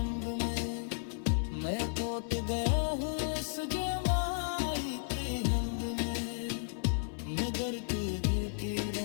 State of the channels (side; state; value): right; silent; 55 dB below the other